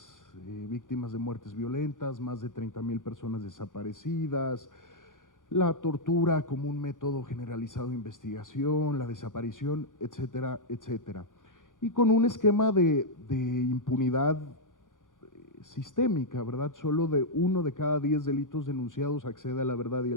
víctimas de muertes violentas, más de 30,000 personas desaparecidas, la tortura como un método generalizado de investigación, la desaparición, etcétera, etcétera. Y con un esquema de impunidad sistémica, ¿verdad? Solo de 1 de cada 10 delitos denunciados accede a la verdad y a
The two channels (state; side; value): late; right; 0.88 ms